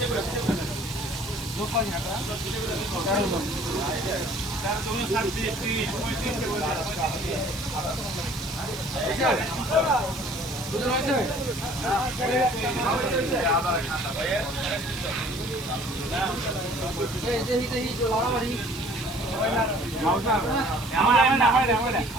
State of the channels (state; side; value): noise; right; hiss, 18 dB below the sound